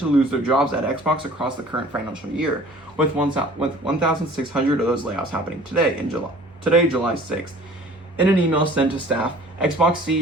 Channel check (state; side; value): normal; both; correlation 0.49